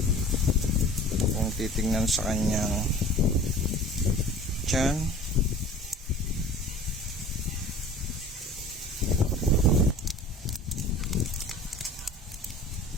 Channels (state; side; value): normal; both; correlation 0.43